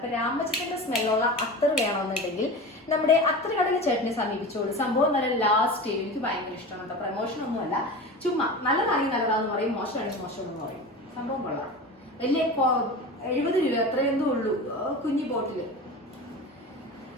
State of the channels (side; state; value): both; normal; correlation 0.30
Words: രാമച്ചത്തിന്റെ സ്മെല്ലുള്ള അത്തർ വേണമെന്നുണ്ടെങ്കിൽ നമ്മുടെ അത്ര കടയിൽ ചേട്ടനെ സമീപിച്ചോളൂ. സംഭവം നല്ല ലാസ്റ്റ് എനിക്ക് ഭയങ്കര ഇഷ്ടമാണ് കേട്ടോ. പ്രമോഷൻ ഒന്നുമല്ല, ചുമ്മാ നല്ലതാണെങ്കിൽ നല്ലതാന്ന് പറയും, മോശമാണെങ്കിൽ മോശമെന്ന് പറയും. സംഭവം കൊള്ളാം. വലിയ 70 രൂപ എത്രയെന്തോ ഉള്ളൂ, കുഞ്ഞി ബോട്ടില്.